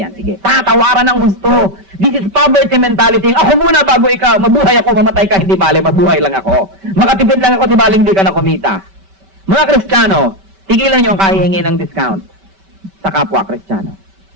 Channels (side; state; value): left; late; 5.2 ms